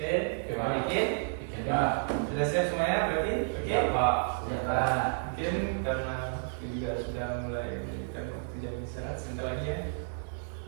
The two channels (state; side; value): silent; left; digital silence